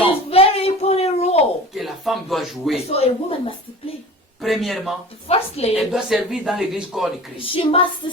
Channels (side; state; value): both; normal; correlation 0.38